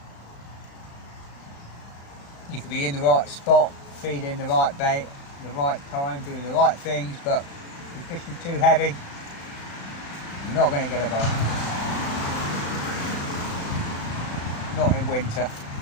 You could be in the right spot, feeding the right bait, the right time, doing the right things, but if you're fishing too heavy, you're not going to get a bite. Not in winter.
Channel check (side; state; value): right; late; 36 ms